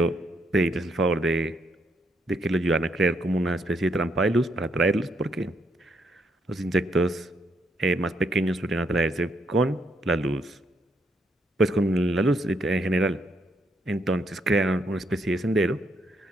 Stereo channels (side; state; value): both; normal; correlation 0.75